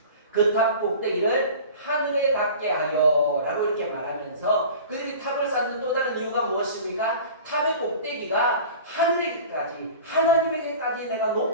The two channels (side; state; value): both; inverted; correlation -0.39